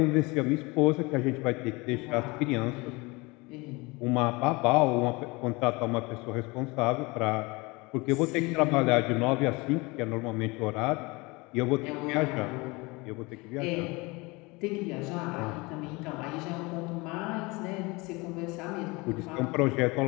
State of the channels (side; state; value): right; quieter; 25.0 dB